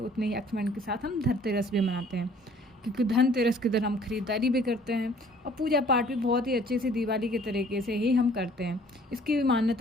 उतने ही एक्साइटमेंट के साथ हम धनतेरस भी मनाते हैं, क्योंकि धनतेरस के दिन हम खरीदारी भी करते हैं और पूजा पाठ भी बहुत ही अच्छे से दिवाली के तरीके से ही हम करते हैं। इसकी भी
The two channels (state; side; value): normal; both; correlation 0.56